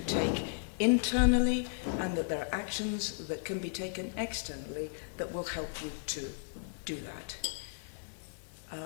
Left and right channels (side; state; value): right; silent; digital silence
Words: take internally and that there are actions that can be taken externally that will help you to do that.